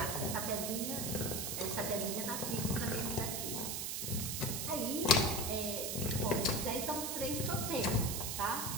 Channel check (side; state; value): right; noise; hiss, 2 dB below the sound